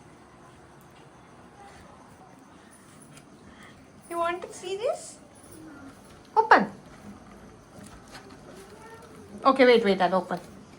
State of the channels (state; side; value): identical; both; correlation 1.00